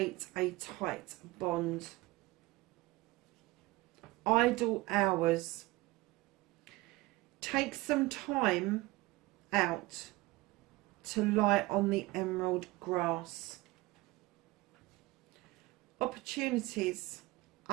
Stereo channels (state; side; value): quieter; left; 20.3 dB